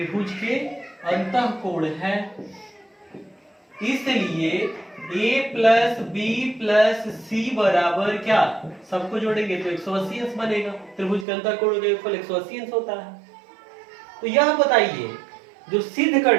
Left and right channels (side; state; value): left; drops out; at 11.2 s